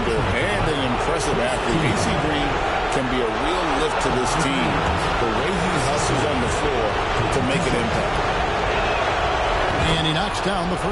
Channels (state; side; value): identical; both; correlation 1.00